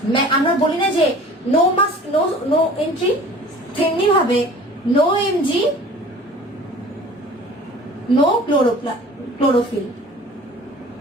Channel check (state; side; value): normal; both; correlation 0.45